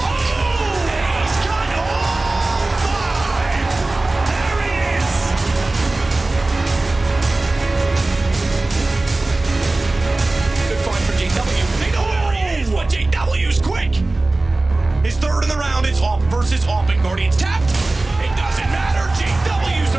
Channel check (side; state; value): left; quieter; 3.0 dB